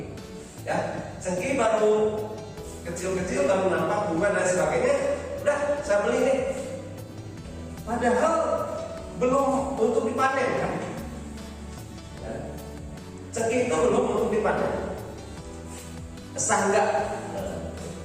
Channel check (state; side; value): identical; both; correlation 1.00